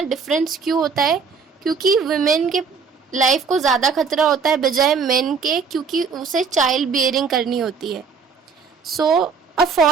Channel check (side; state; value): left; quieter; 5.5 dB